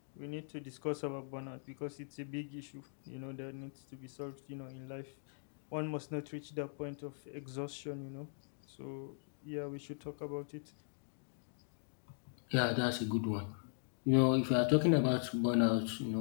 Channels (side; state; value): right; silent; digital silence